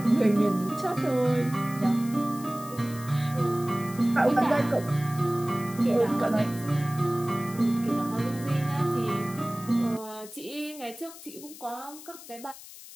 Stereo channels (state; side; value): noise; left; hiss, 16 dB below the sound